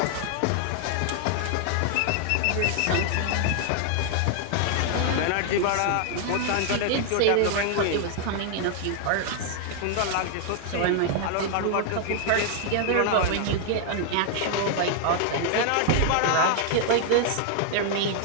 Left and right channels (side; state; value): both; different; correlation 0.00